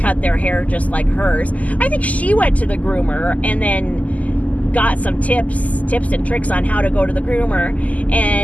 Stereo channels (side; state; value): right; late; 0.075 ms